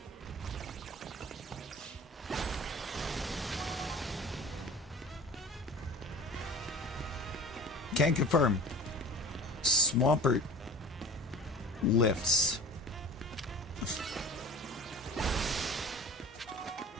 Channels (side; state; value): both; normal; correlation 0.38